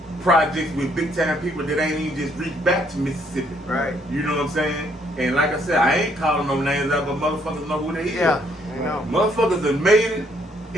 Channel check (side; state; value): both; normal; correlation 0.68